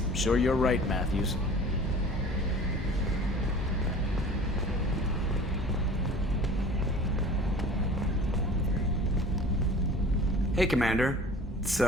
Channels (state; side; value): normal; both; correlation 0.43